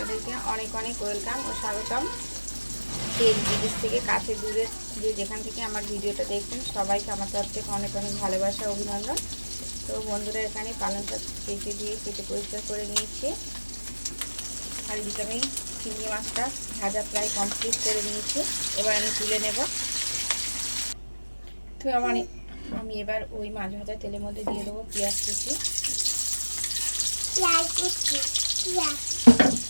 অনেক অনেক ওয়েলকাম ও স্বাগতম। দেশ বিদেশ থেকে কাছে দূরে যে যেখান থেকে আমার ভিডিওটা দেখছেন সবাইকে আমার তরফ থেকে অনেক অনেক ভালোবাসা অভিনন্দন। তো বন্ধুরা, এখানে পালংটা কেটে দিয়ে কেটে পরিষ্কার করে নিয়েছি। আর এদিকে আমি চিংড়ি মাছটা ভাজা প্রায় কমপ্লিট করে নিয়েছি। এবার আমি তুলে নেব। তো আমি এবার ওই মাছ ভাজা তেলের মধ্যে দিয়ে দেবো পেঁয়াজ কুচি,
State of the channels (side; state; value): both; inverted; correlation -1.00